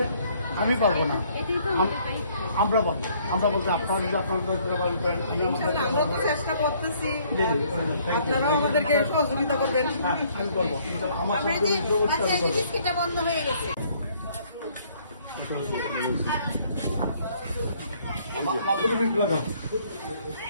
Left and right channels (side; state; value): both; inverted; correlation -0.63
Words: আমি পারবো না, আমরা পারবো। আমরা বলতে আপনারা যদি চেষ্টা করতেছি, আপনারাও আমাদেরকে সহযোগিতা করবেন। আমি করবো, আমার বন্ধ হয়ে গেছে।